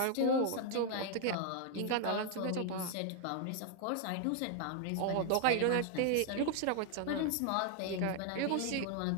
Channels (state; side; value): different; both; correlation 0.00